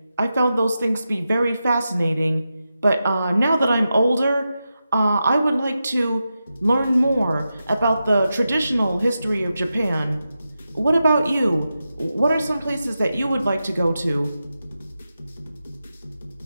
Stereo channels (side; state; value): both; inverted; correlation -0.90